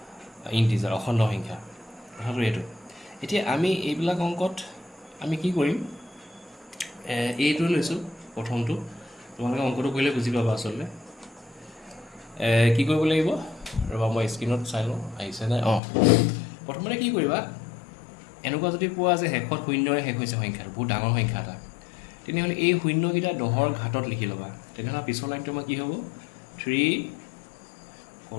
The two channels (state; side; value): drops out; right; at 15.8 s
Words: ইণ্টিজাৰ, অখণ্ড সংখ্যা। কথাটো এইটো। এতিয়া আমি এইবিলাক অংকত আমি কি কৰিম, এইটো লৈছোঁ প্ৰথমটো। তোমালোকে অংকটো কৰিলে বুজি পাবা আচলতে। কি কৰিব লাগিব, ৰ'বা মই স্ক্ৰীণত চাই লওঁ আহিছেনে। প্ৰথমতে কি কৰিবা, এনেকুৱা যদি পোৱা যে শেষত শূন্যৰে শেষ হৈছে সংখ্যাটো, বহুত ডাঙৰ সংখ্যা এটা, তেনেহ'লে এই শূন্যকেইটা 10ৰ ঘাতত লিখি ল'বা। তেনেহ'লে পিছৰ লাইনটো আমাৰ কি হ'ব, 3